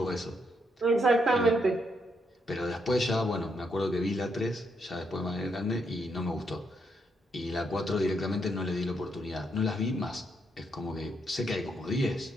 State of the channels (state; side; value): normal; both; correlation 0.77